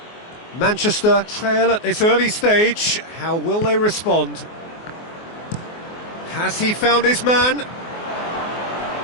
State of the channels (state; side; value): late; right; 24 ms